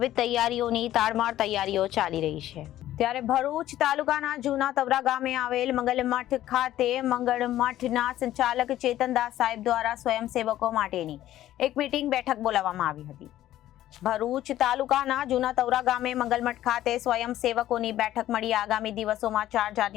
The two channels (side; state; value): right; quieter; 13.5 dB